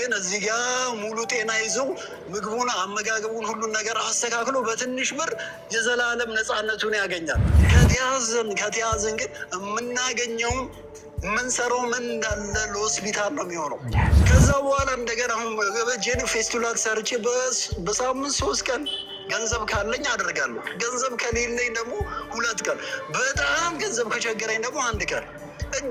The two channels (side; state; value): both; identical; correlation 1.00